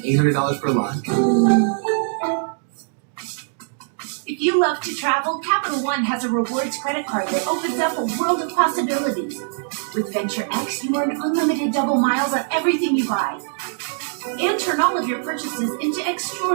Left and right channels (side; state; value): left; silent; digital silence